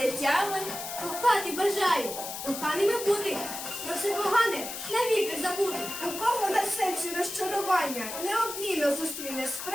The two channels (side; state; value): left; noise; hiss, 7 dB below the sound